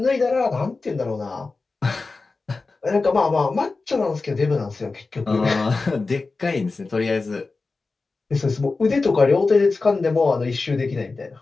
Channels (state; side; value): quieter; right; 3.9 dB